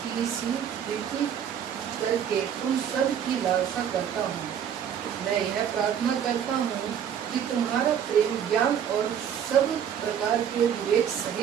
की सी प्रीति करके तुम सब की लालसा करता हूँ। मैं यह प्रार्थना करता हूँ कि तुम्हारा प्रेम ज्ञान और सब प्रकार के विवेक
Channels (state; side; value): quieter; left; 8.7 dB